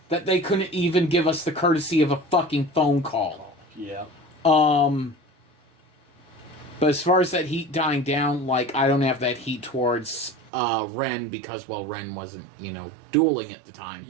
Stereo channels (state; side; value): drops out; left; at 10.5 s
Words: that they couldn't even give us the courtesy of a fucking phone call. Yeah. But as far as that heat dying down, I don't have that heat towards Ren because, Ren wasn't, dueling at the time.